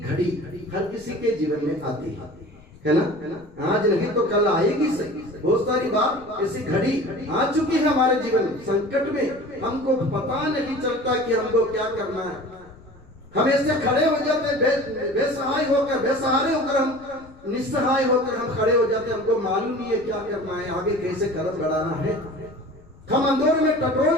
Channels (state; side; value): noise; left; rumble, 25 dB below the sound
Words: घड़ी हर किसी के जीवन में आती है ना। आज नहीं तो कल आएगी सही। बहुत सारी बार ऐसी घड़ी आ चुकी है हमारे जीवन में, संकट में हमको पता नहीं चलता कि हमको क्या करना है। हम ऐसे खड़े हो जाते, बेसहाय होकर, बेसहारे होकर, हम निस्सहाय होकर हम खड़े हो जाते, हमको मालूम नहीं है क्या करना है, आगे कैसे कदम बढ़ाना है। हम अंधेरे में टटोल